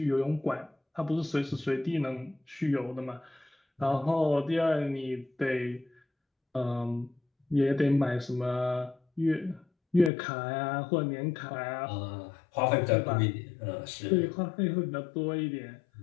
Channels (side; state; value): right; drops out; at 10.1 s